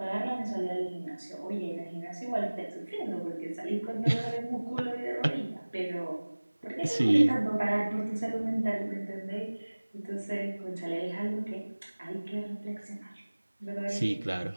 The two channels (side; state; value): both; inverted; correlation -1.00